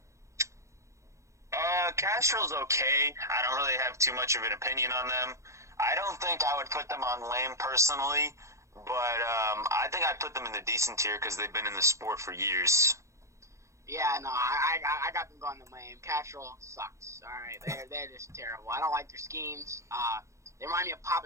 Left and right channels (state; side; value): late; left; 0.14 ms